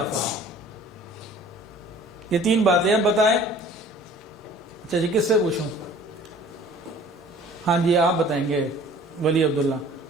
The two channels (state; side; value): normal; both; correlation 0.49